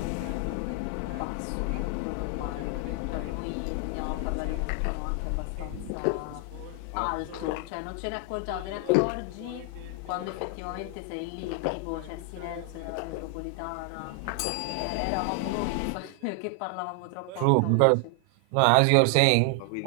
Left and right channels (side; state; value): both; different; correlation 0.00